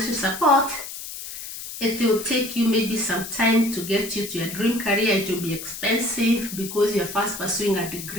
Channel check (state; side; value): noise; left; hiss, 10 dB below the sound